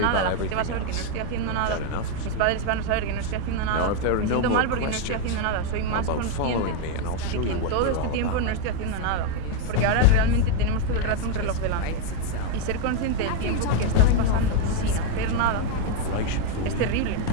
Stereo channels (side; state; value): both; different; correlation 0.01